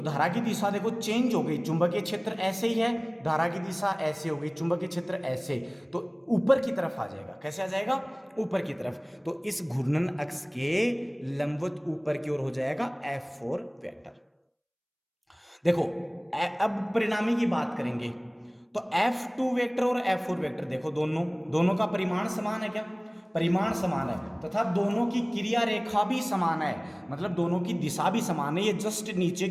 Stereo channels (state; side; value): identical; both; correlation 1.00